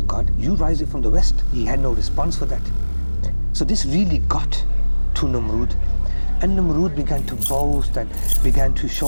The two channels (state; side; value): inverted; both; correlation -1.00